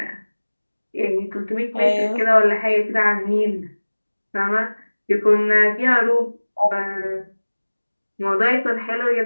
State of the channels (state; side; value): inverted; both; correlation -1.00